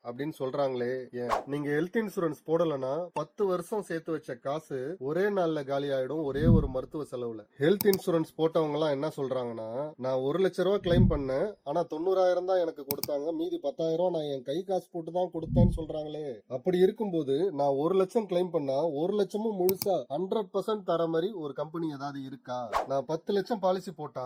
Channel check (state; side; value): identical; both; correlation 1.00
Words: அப்படின்னு சொல்றாங்களே ஏன்? நீங்க ஹெல்த் இன்சூரன்ஸ் போடலனா 10 வருஷம் சேர்த்து வச்ச காசு ஒரே நாள்ல காலி ஆயிடும், ஒரே ஒரு மருத்துவ செலவுல. ஹெல்த் இன்சூரன்ஸ் போட்டவங்க எல்லாம் என்ன சொல்றாங்கன்னா, நான் 1,00,000 கிளைம் பண்ணேன், ஆனா 90,000 தான் எனக்கு கொடுத்தாங்க, மீதி 10,000 நான் என் கை காசு போட்டு தான் கொடுத்தேன்னு சொல்றாங்களே. அப்படி இருக்கும்போது நான் 1,00,000 கிளைம் பண்ணா 1,00,000 முழுசா 100% தர மாதிரி ஒரு கம்பெனி ஏதாவது இருக்கா? நான் 10 லட்சம் பாலிசி